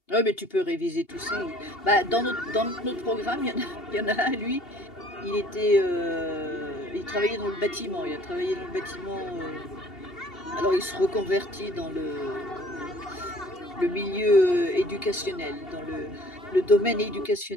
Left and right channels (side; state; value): right; late; 2.8 ms